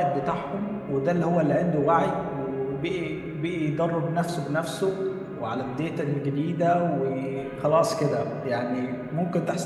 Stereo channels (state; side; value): identical; both; correlation 1.00